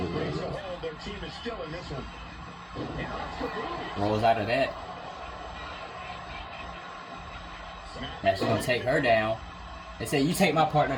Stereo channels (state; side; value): identical; both; correlation 1.00